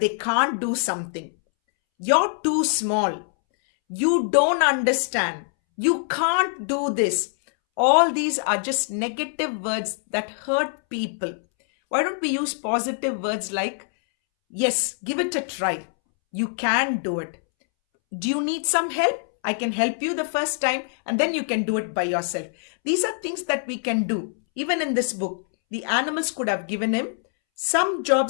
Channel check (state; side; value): silent; right; 63 dB below the other